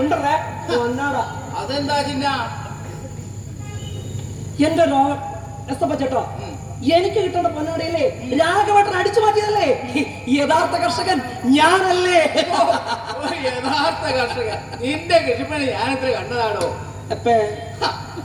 ഉണ്ടല്ലേ? പൊന്നാട അതെന്താ ചിന്ന? എന്റെ എസ്തപ്പ ചേട്ടോ, എനിക്ക് കിട്ടേണ്ട പൊന്നാടയില്ലേ രാഘവട്ടൻ അടിച്ചു മാറ്റിയതല്ലേ? യഥാർത്ഥ കർഷകൻ ഞാനല്ലേ? യഥാർത്ഥ കർഷകൻ. നിന്റെ കൃഷിപ്പണി ഞാനിത്ര കണ്ടതാണോ?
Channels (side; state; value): both; identical; correlation 1.00